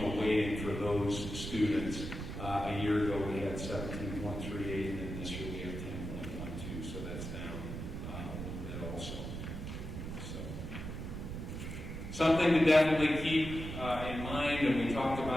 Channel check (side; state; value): right; noise; rumble, 6 dB below the sound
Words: weighting for those students. A year ago we had 17.38, and then this year we have 10.12, so that's down a little bit also. So something to definitely keep in mind, and we talked